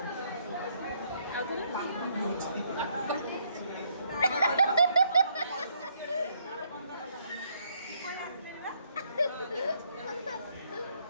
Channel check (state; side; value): inverted; both; correlation -0.70